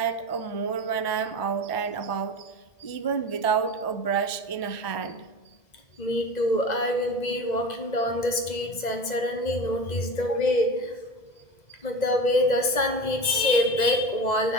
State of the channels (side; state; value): right; late; 2.0 ms